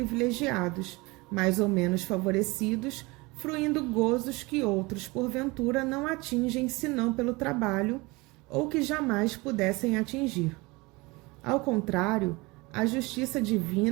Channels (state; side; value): quieter; left; 24.2 dB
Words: mais ou menos favorecidos, fruindo gozos que outros, porventura, não atingem senão pelo trabalho, ou que jamais pudessem atingir. Ao contrário, a justiça